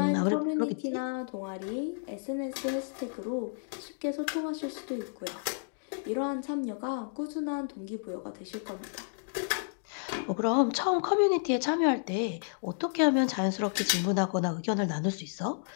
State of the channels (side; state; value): right; silent; digital silence